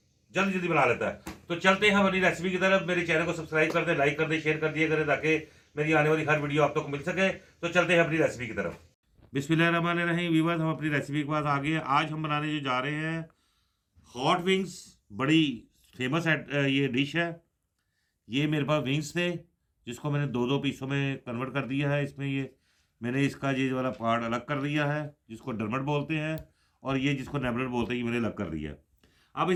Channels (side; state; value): both; identical; correlation 1.00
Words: जल्दी जल्दी बना लेता है। तो चलते हैं हम अपनी रेसिपी की तरफ। मेरे चैनल को सब्सक्राइब कर दें, लाइक कर दें, शेयर कर दिया करें ताकि मेरी आने वाली हर वीडियो आप तक मिल सके। तो चलते हैं अपनी रेसिपी की तरफ। बिस्मिल्लाहिर्रहमानिर्रहीम। व्यूअर्स, हम अपनी रेसिपी के पास आ गए हैं। आज हम बनाने जो जा रहे हैं हॉट विंग्स। बड़ी फेमस ये डिश है। ये मेरे पास विंग्स थे जिसको मैंने दो दो पीसों में कन्वर्ट कर दिया है। इसमें ये मैंने इसका ये वाला पार्ट अलग कर दिया है जिसको डरमट बोलते हैं, और ये जिसको नेबलर बोलते हैं ये मैंने अलग कर दिया है। अब